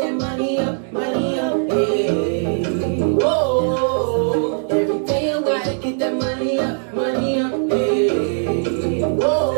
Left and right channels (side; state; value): left; silent; 66 dB below the other